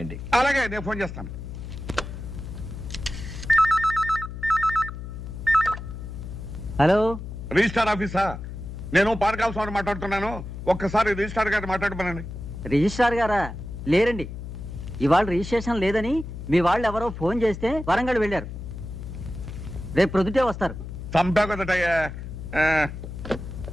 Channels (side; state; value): left; noise; hum, 9 dB below the sound